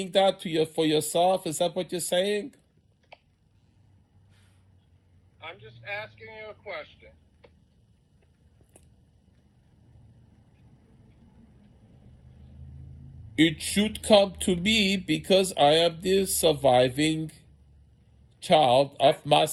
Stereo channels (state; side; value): identical; both; correlation 1.00